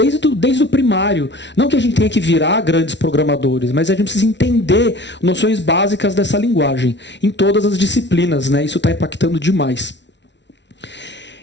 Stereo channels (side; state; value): right; late; 0.51 ms